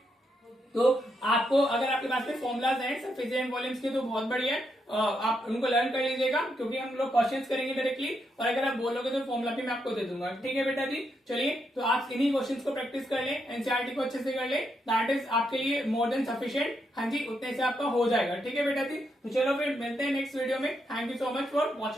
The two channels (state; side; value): normal; both; correlation 0.80